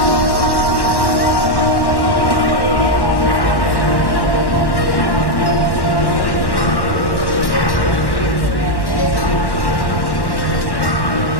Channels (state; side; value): late; right; 1.1 ms